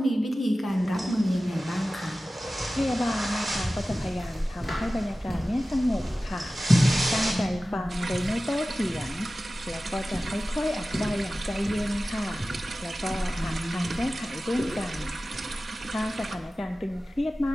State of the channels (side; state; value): both; normal; correlation 0.95